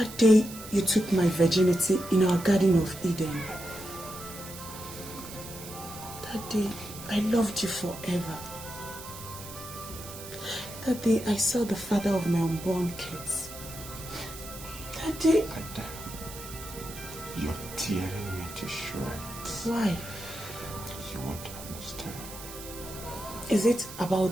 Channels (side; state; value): right; noise; hiss, 13 dB below the sound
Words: day you took my virginity in our Garden of Eden. That day I loved you forever. That day I saw the father of my unborn kids. That day... Ada, you're tearing me to shreds. Why? You won't understand. Is it